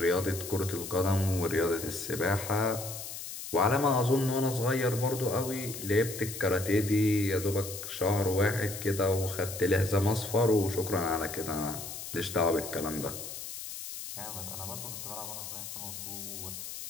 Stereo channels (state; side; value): noise; left; hiss, 9 dB below the sound